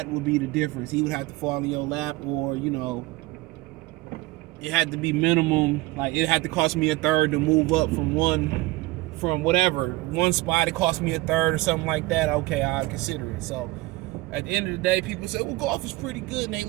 would be the difference. He would have to fall in your lap, or it had to be minimum. Like, it had to cost me a third to move up from one spot. It cost me a third or something like that. Okay, I'll consider it. So at the end of the day, people say, well, golf is pretty good and they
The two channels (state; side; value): quieter; left; 19.9 dB